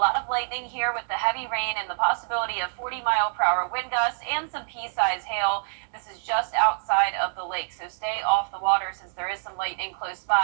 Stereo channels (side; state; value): left; silent; 61 dB below the other